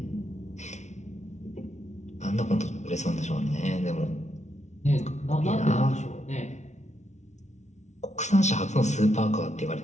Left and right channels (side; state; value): right; late; 0.33 ms